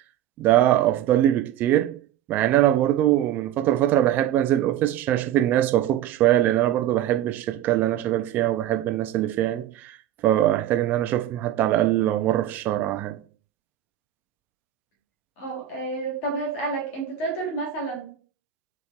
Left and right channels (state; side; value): quieter; left; 11.9 dB